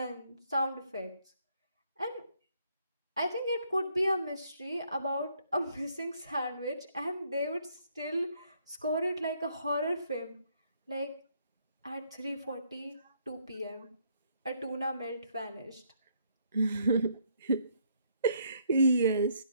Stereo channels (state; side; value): inverted; both; correlation -0.69